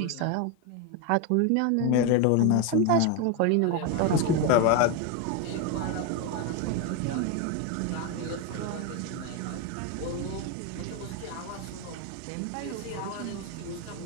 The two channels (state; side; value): different; both; correlation 0.02